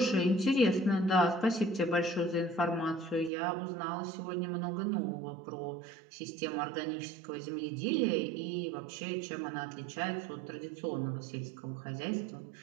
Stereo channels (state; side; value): drops out; left; at 3.3 s